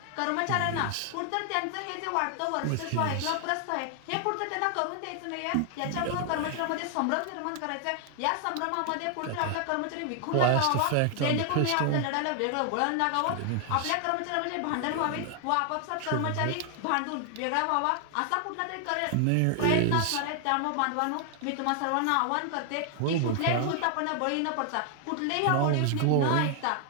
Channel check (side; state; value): both; different; correlation 0.00